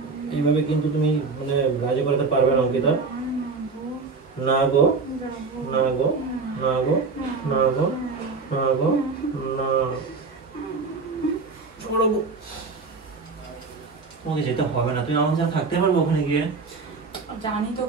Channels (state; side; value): quieter; left; 4.4 dB